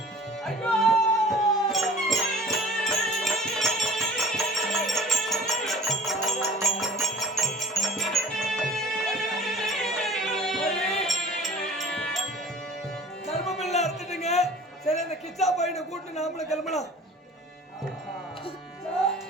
சரி, அந்த கிச்சா பையனை கூட்டு நாமள கிளம்பலாம்.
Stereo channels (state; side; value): normal; both; correlation 0.47